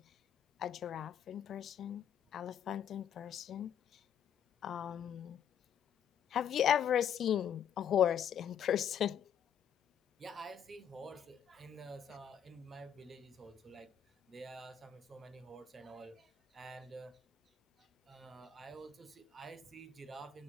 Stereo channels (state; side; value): quieter; right; 8.6 dB